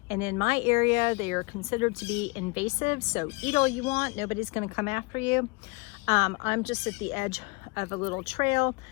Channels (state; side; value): quieter; right; 28.4 dB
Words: And in my area, they are considered to be invasive, so eat all you want, nobody's gonna come after you. I'm just at the edge of a little trail.